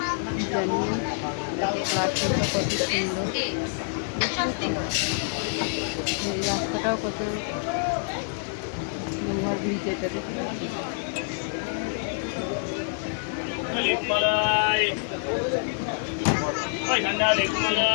জানিয়ে। প্ল্যাটফর্মটা কত সুন্দর, এই রাস্তাটাও কত লোহার ব্রিজ, এটা দেখতে পাচ্ছি।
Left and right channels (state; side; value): silent; right; 60 dB below the other